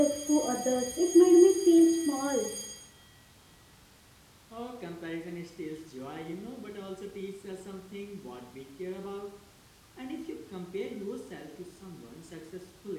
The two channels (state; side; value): identical; both; correlation 1.00